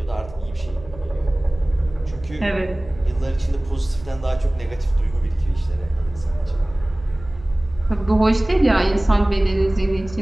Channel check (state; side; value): noise; right; hum, 18 dB below the sound